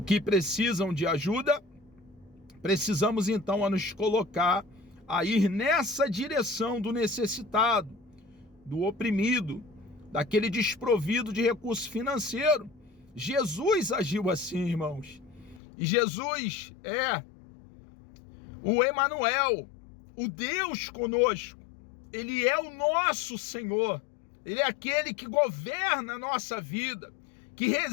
que precisam de ajuda, precisamos então a nos colocar a ir nessa direção do necessitado, do oprimido, daquele desprovido de recurso financeiro. Jesus agiu assim, irmãos. E Jesus é o Emanuel, o Deus conosco. Ele é o nosso Senhor. Ele é aquele que governa a nossa vida, que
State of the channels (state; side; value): drops out; right; at 15.6 s